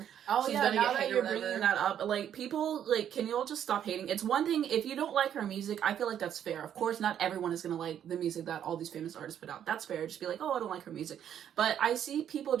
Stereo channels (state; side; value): quieter; left; 9.7 dB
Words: she's gonna now get that hate you're or whatever. bringing that up, like, people, like, can you all just stop hating? It's one thing, if you don't like her music, I feel like that's fair. Of course, not everyone is gonna like the music that all these famous artists put out. That's fair. Just be like, oh, I don't like her music. But I see people